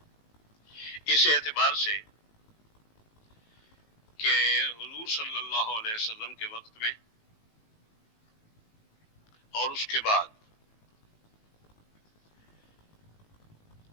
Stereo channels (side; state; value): right; late; 18 ms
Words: اس اعتبار سے کہ حضور صلی اللہ علیہ وسلم کے وقت میں اور اس کے بعد